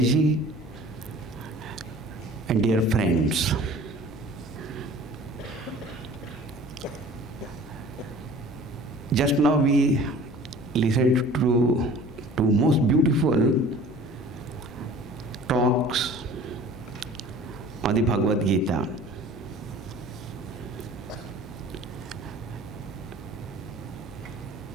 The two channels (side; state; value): both; normal; correlation 0.46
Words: Ji and dear friends, just now we listened to two most beautiful talks on the Bhagavad Gita.